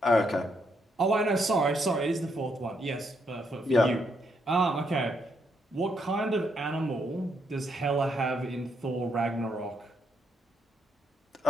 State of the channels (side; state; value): both; normal; correlation 0.76